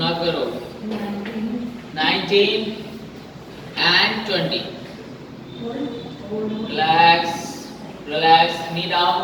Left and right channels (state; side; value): identical; both; correlation 1.00